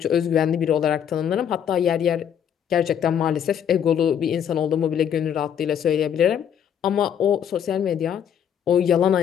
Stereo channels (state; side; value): quieter; right; 8.8 dB